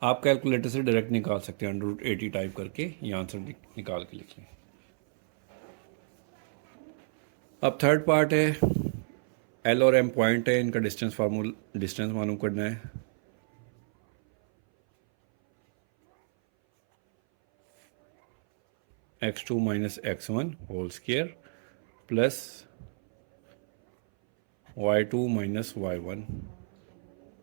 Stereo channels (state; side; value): silent; left; 59 dB below the other